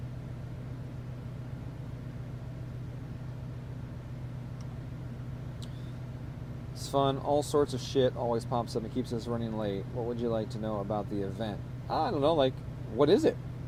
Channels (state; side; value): identical; both; correlation 1.00